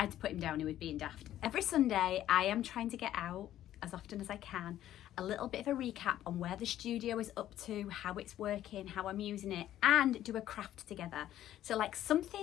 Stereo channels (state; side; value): quieter; right; 12.6 dB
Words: had to put him down, he was being daft. Every Sunday I am trying to get out as often as I can, a little bit of a recap on where the studio is up to, how it's working, how I'm using it, and do a craft together. So like